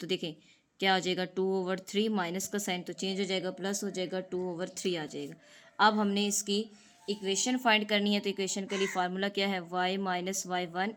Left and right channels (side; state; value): both; identical; correlation 1.00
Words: देखें क्या आ जाएगा 2/3, माइनस का साइन तो चेंज हो जाएगा, प्लस हो जाएगा 2/3 आ जाएगा। अब हमने इसकी इक्वेशन फाइंड करनी है, तो इक्वेशन के लिए फार्मूला क्या है, y minus y1